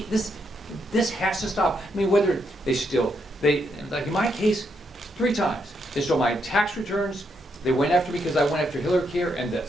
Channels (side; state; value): both; normal; correlation 0.78